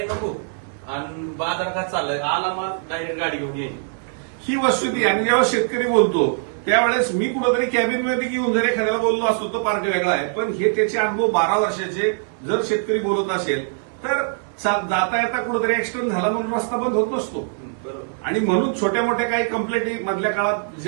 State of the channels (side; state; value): left; silent; 64 dB below the other